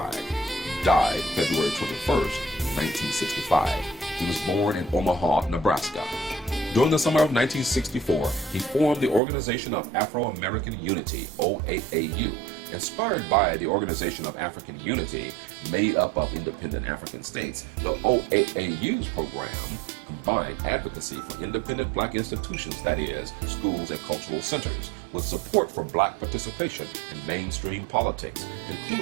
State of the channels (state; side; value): drops out; left; at 9.2 s